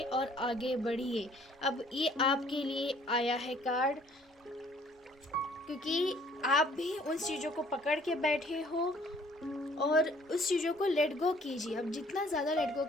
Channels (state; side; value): normal; both; correlation 0.59